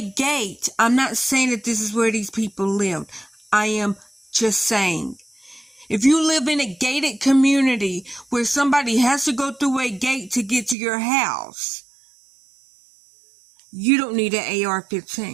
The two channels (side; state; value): left; drops out; at 10.8 s